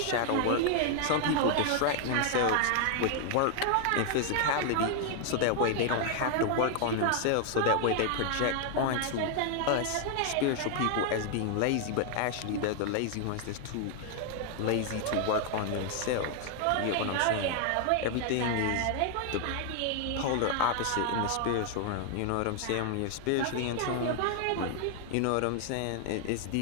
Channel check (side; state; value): both; different; correlation 0.00